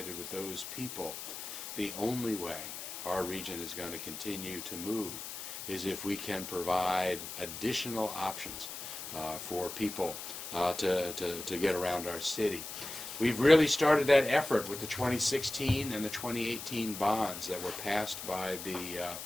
with those people, the only way our region is going to continue to move is if we can provide additional options for people to get around our city. We've really started that effort with the 2016 and the 2018 bonds that were passed by the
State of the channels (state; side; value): noise; left; hiss, 8 dB below the sound